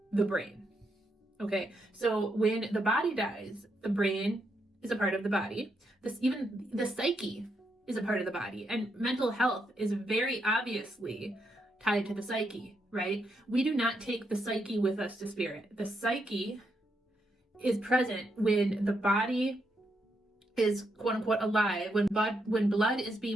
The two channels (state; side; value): normal; both; correlation 0.80